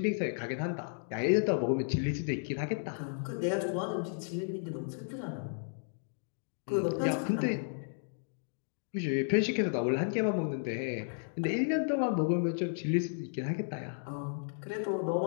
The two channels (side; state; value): right; silent; digital silence